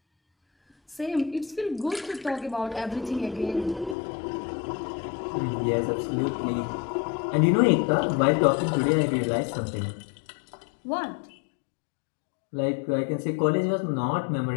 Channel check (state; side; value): drops out; right; at 4.0 s